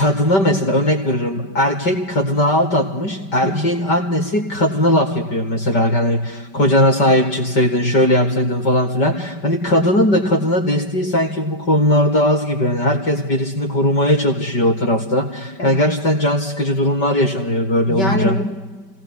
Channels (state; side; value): late; right; 5.2 ms